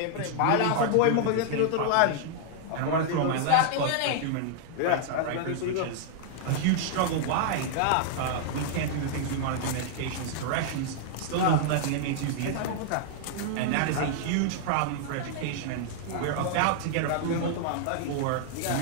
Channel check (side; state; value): both; different; correlation -0.01